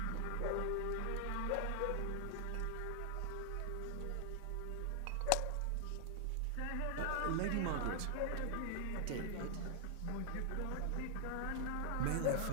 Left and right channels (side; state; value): both; different; correlation 0.00